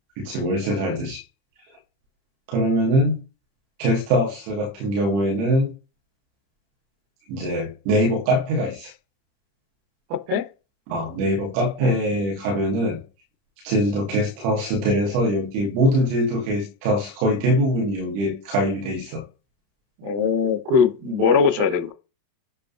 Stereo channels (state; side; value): late; left; 30 ms